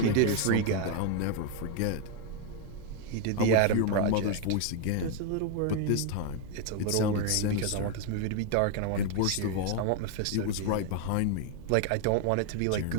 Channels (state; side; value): different; both; correlation 0.01